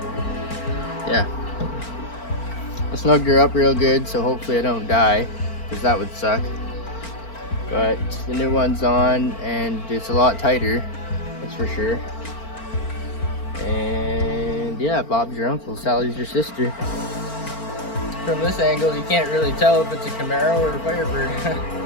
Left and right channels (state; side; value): late; right; 4.4 ms